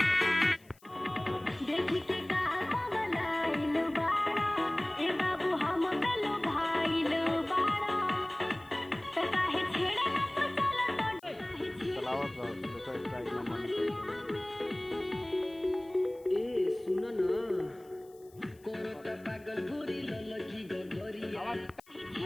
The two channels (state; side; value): noise; left; hiss, 29 dB below the sound